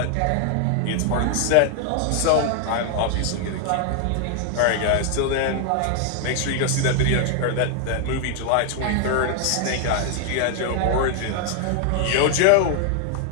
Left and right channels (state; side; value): different; both; correlation 0.00